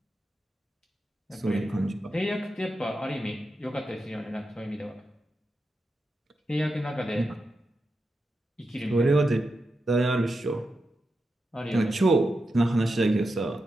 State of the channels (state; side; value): normal; both; correlation 0.88